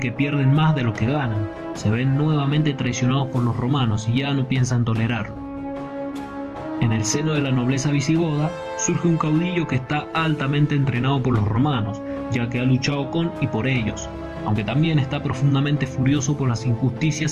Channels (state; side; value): identical; both; correlation 1.00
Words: pierden más de lo que ganan. Se ven nuevamente traicionados por los romanos y ya no piensan tolerarlo. En el seno de la nobleza visigoda, surge un caudillo que está altamente entrenado por los romanos, ya que ha luchado con y por ellos, aunque también está profundamente furioso por las